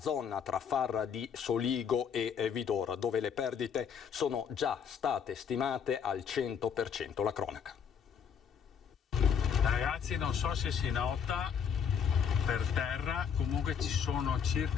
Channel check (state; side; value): quieter; right; 7.3 dB